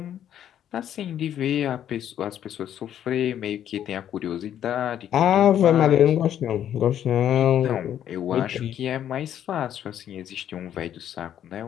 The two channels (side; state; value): right; quieter; 10.4 dB